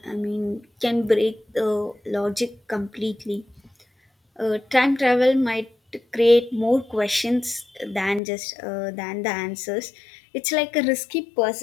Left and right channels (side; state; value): right; drops out; at 8.2 s